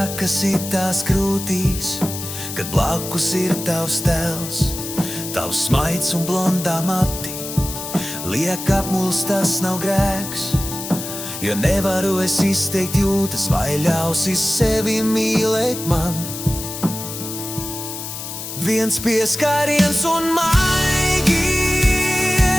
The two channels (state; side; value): noise; left; hiss, 8 dB below the sound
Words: itās krūtīs, kad blakus ir tavs tēls, tavs smaids un blondā mati. Liek apmulst, tas nav grēks, jo nevaru es izteikt jūtas, vai ļausi sevi mīlēt man. Viens pieskāriens un man